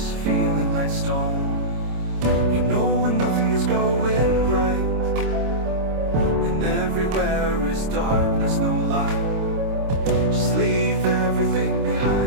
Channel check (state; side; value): late; left; 26 ms